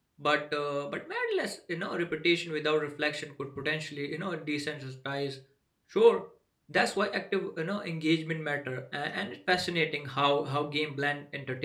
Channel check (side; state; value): both; identical; correlation 1.00